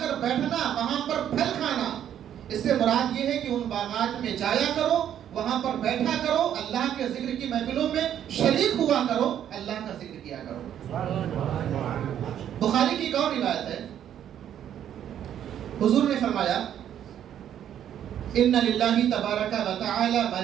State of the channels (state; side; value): quieter; left; 10.1 dB